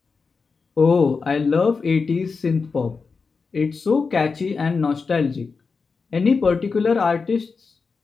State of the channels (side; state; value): right; quieter; 4.8 dB